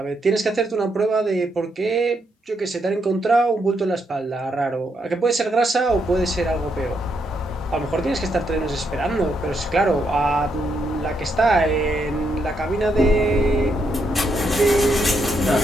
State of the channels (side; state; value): both; normal; correlation 0.78